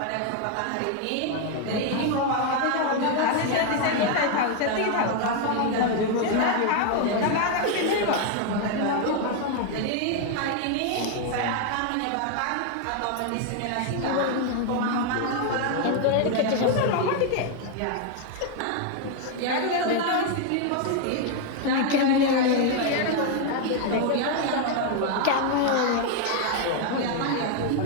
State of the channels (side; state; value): both; different; correlation 0.00